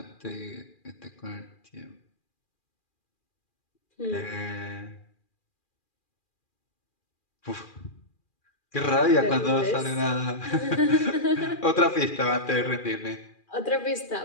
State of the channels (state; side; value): late; right; 2.4 ms